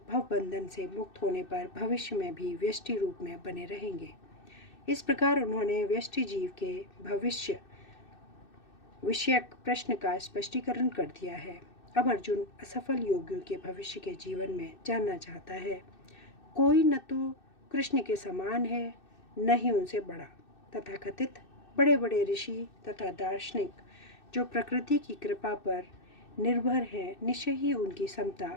भवबंधन से मुक्त होने पर भविष्य में भी व्यष्टि रूप में बने रहेंगे। इस प्रकार उन्होंने व्यष्टि जीव के भविष्य विषयक प्रश्न का स्पष्टीकरण कर दिया है। अब अर्जुन असफल योगियों के भविष्य के जीवन में जानना चाहता है। कोई न तो कृष्ण के समान है, न ही उनसे बड़ा। तथाकथित बड़े बड़े ऋषि तथा दार्शनिक जो प्रकृति की कृपा पर निर्भर हैं, निश्चय ही उनकी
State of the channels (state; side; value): late; right; 2.6 ms